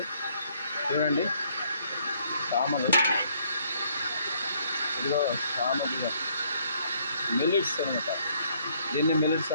చూడండి. సామలు ఇదిగో సామ బియ్యం మిల్లెట్స్ అనమాట. దీన్ని మిల్లెట్స్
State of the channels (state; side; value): inverted; both; correlation -0.66